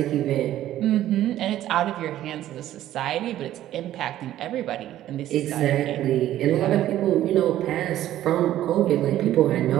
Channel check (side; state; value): left; quieter; 13.1 dB